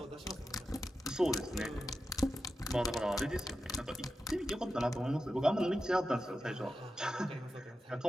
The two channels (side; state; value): both; normal; correlation 0.91